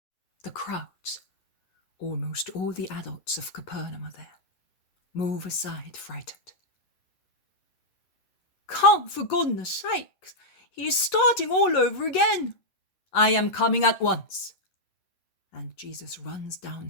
The crowds, almost all the adults of Capernaum are there, move aside frightened. Come, for goodness sake, he is starting all over again. I am coming at once. And Jesus runs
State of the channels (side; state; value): right; late; 11 ms